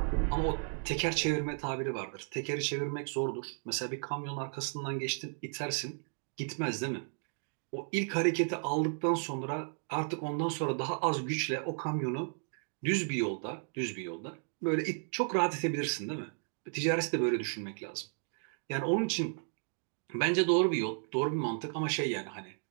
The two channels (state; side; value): silent; left; 55 dB below the other